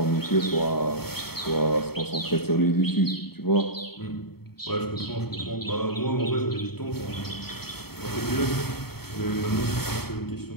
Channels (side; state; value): right; late; 0.96 ms